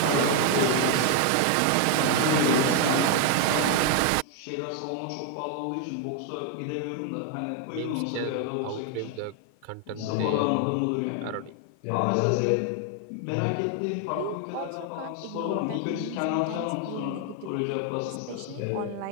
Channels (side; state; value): both; different; correlation 0.01